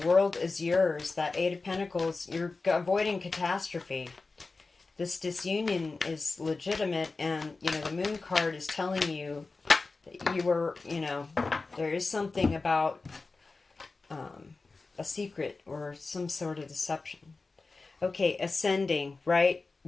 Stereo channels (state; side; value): quieter; right; 3.8 dB